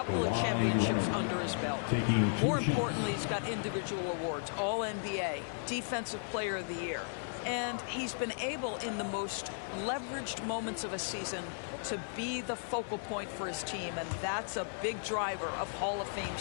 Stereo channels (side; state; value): right; silent; 54 dB below the other